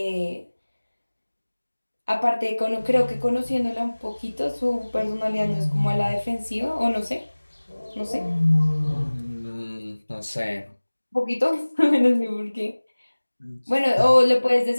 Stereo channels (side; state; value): both; inverted; correlation -1.00